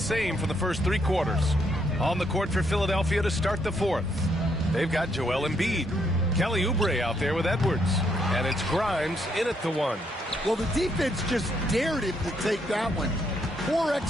for the first 3 quarters. On the court for Philadelphia to start the fourth, they've got Joel Embiid. Kelly Oubre out there with Edwards. And it's Grimes in at the 1. Well, the defense just dared him to take that one. Poor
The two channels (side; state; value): both; normal; correlation 0.74